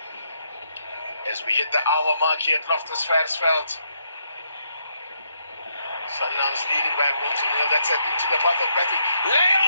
As we hit the hour mark here at Loftus-Versfeld, Sundowns leading by 1-0. That's it into the path of Bradley.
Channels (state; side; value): inverted; both; correlation -0.75